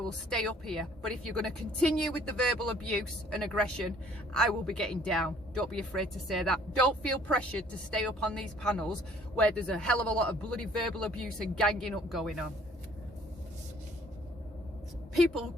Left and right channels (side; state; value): both; normal; correlation 0.58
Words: stay up here. But if you're going to continue with the verbal abuse and aggression, I will be getting down. Don't be afraid to say that. Don't feel pressured to stay up on these panels where there's a hell of a lot of bloody verbal abuse and ganging up going on. People